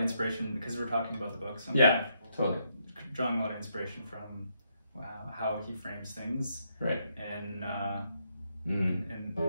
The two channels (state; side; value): inverted; both; correlation -0.77